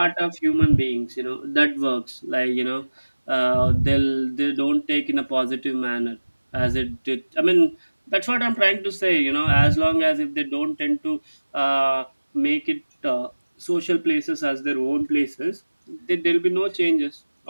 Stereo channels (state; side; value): inverted; both; correlation -1.00